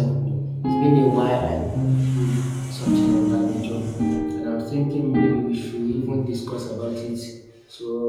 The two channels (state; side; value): identical; both; correlation 1.00